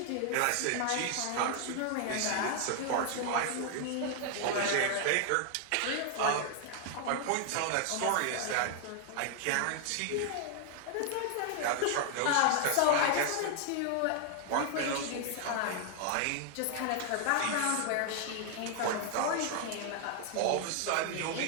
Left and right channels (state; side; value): different; both; correlation 0.00